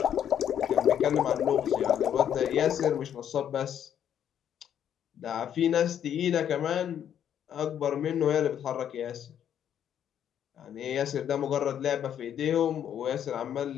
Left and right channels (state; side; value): quieter; right; 9.5 dB